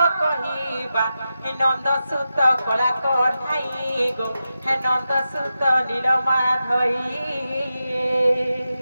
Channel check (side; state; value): both; inverted; correlation -0.90